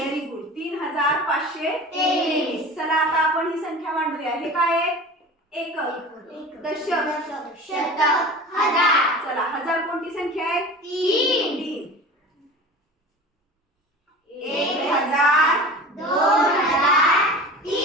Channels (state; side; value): normal; both; correlation 0.37